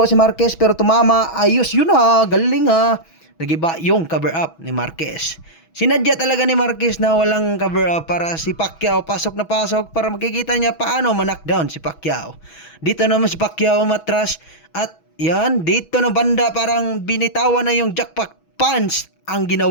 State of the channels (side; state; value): right; late; 6.2 ms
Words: si Marquez, pero tumama. Ayos yun ha, galing ha. Nagiba yung cover up ni Marquez. Sinadya talaga ni Marquez na walang cover up para si Pacquiao pasok na pasok para makikita niya paano ma-knockdown si Pacquiao. Dito naman si Pacquiao matras at yan, dito na banda parang binitawan na yung jackpot punch ang